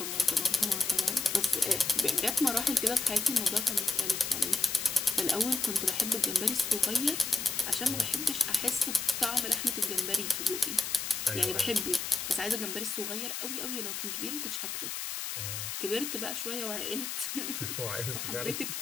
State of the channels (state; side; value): noise; left; hiss, 4 dB below the sound